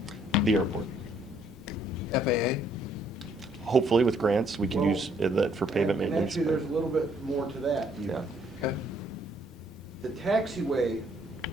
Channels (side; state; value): both; normal; correlation 0.66